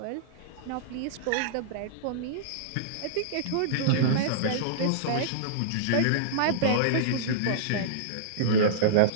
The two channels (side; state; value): both; different; correlation -0.03